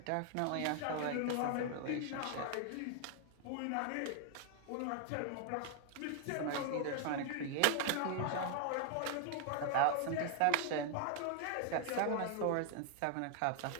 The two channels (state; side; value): different; both; correlation 0.00